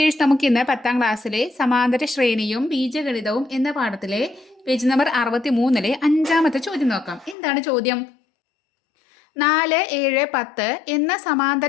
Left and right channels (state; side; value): drops out; right; at 7.4 s